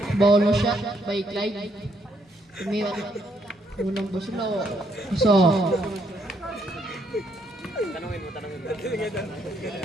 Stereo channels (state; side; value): normal; both; correlation 0.72